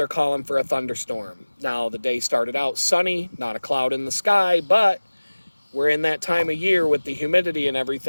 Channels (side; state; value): both; inverted; correlation -1.00